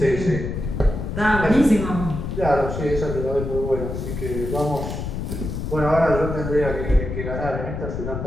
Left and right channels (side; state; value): left; noise; rumble, 5 dB below the sound